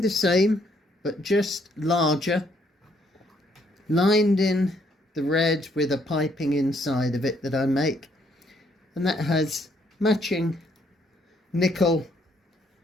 same, but just larger, lined in the red with a piping inside of it that I make, and that has matching nickel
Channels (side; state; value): both; normal; correlation 0.69